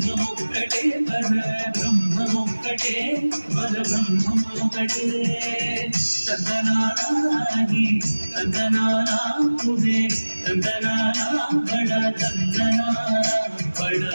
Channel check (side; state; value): both; inverted; correlation -1.00